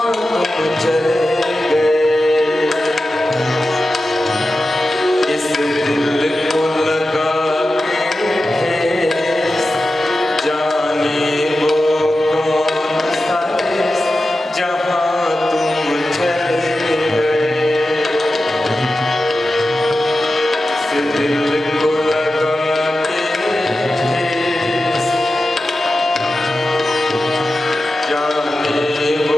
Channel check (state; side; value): normal; both; correlation 0.93